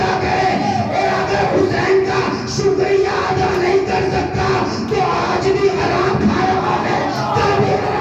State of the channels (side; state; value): both; identical; correlation 1.00